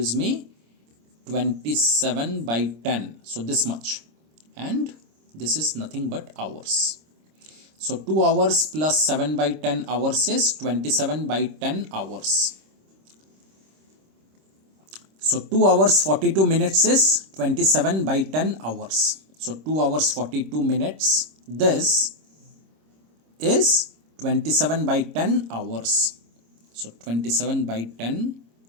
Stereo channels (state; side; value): late; left; 26 ms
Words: me 27 by 10. So this much. And this is nothing but hours. So 2 hours plus 7 by 10 hours is 27 by 10 hours. So 2 hours 42 minutes is 27 by 10 hours. So 2 hours 42 minutes, this is 27 by 10 hours. So 27 by 10,